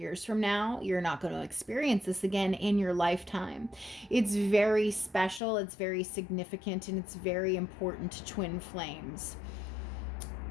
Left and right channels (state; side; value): drops out; right; at 5.4 s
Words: from now, you're not going to experience this again in your lifetime. It's very special, it's very significant, and it's very important to twin flames.